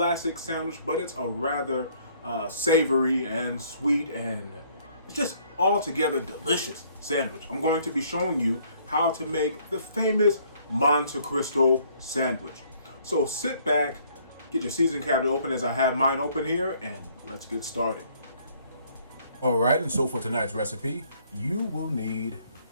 sandwich, but it's a rather savory and sweet and just altogether delicious sandwich. I'm going to be showing you how to make the famous Monte Cristo sandwich. So sit back, get your seasoning cabinet open as I have mine open here, and let's get started. Alright, and so for tonight's recipe, you will need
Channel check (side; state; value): both; inverted; correlation -0.62